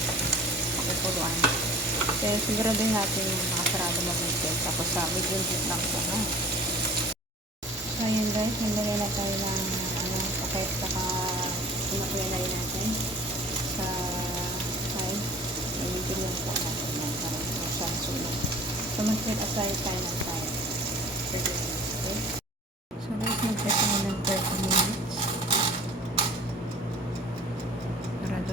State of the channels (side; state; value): both; normal; correlation 0.45